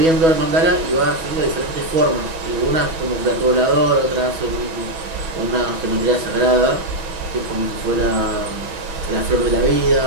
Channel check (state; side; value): late; left; 6.2 ms